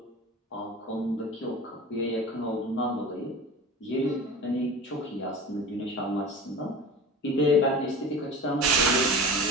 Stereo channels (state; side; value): normal; both; correlation 0.34